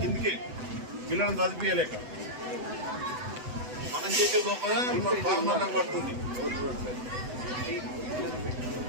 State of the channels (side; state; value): left; late; 8.0 ms